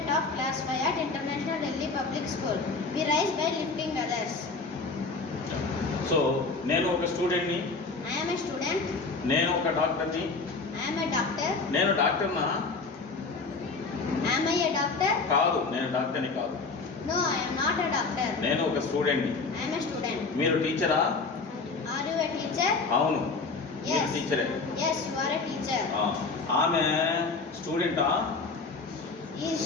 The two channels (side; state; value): right; quieter; 4.1 dB